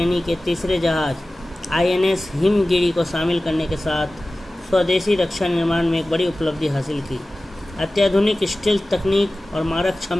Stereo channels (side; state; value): both; normal; correlation 0.96